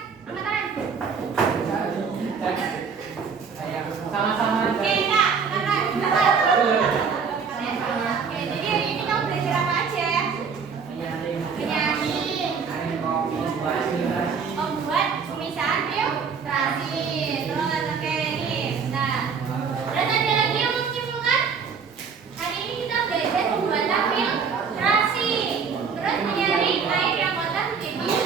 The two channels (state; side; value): quieter; left; 5.9 dB